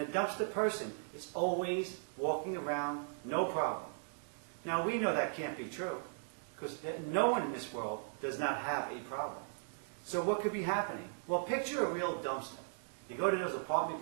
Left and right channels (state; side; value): silent; left; digital silence